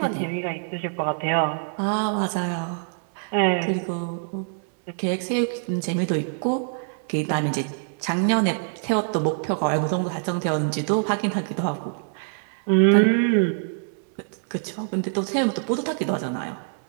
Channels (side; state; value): left; silent; 62 dB below the other